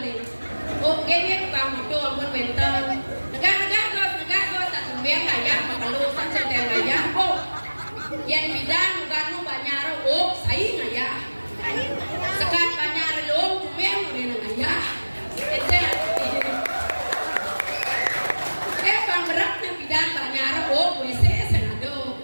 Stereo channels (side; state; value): both; inverted; correlation -1.00